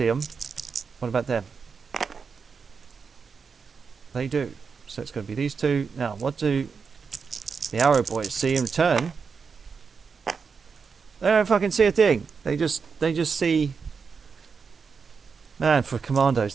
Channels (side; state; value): left; quieter; 5.6 dB